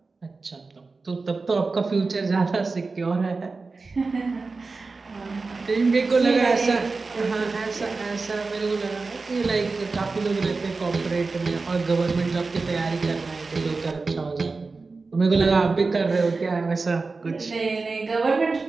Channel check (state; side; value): quieter; left; 4.0 dB